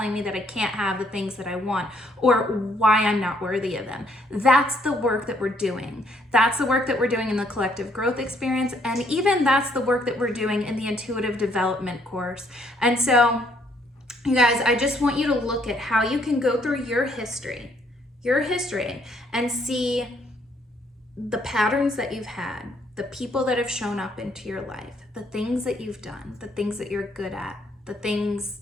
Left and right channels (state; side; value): normal; both; correlation 0.68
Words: me that I can't have the things that I want, or why I'm not worthy of them? That's the work that we're doing. That's the work that we're doing in the collective growth experience, and even that's the work that we're doing in the intuitive development course. And so, you guys, I just want you to look at how you can go through your history, and see the patterns that you've had, the people that have shown up into your life, the things that you've done, the things that you're good at, the